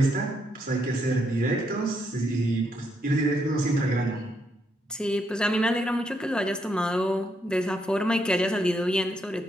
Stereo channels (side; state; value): both; normal; correlation 0.77